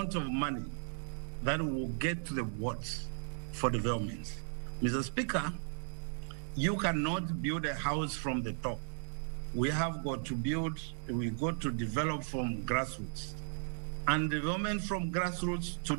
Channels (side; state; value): left; silent; digital silence